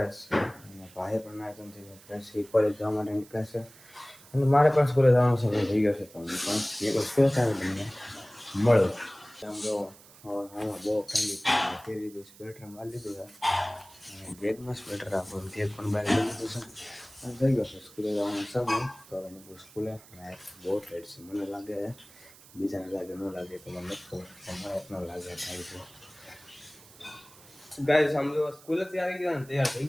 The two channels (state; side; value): noise; right; hiss, 23 dB below the sound